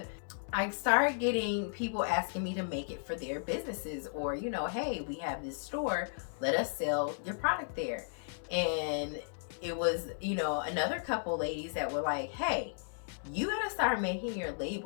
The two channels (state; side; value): silent; right; digital silence